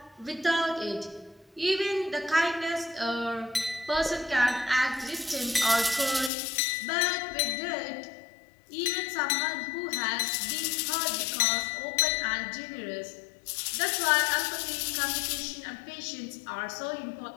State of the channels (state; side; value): drops out; right; at 6.3 s